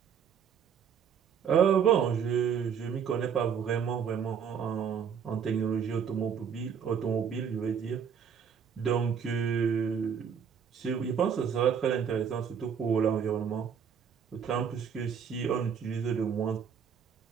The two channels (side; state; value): left; quieter; 7.3 dB